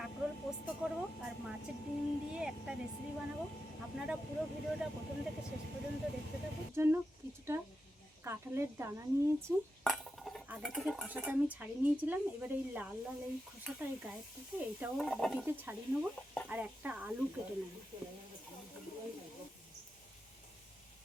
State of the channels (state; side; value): normal; both; correlation 0.89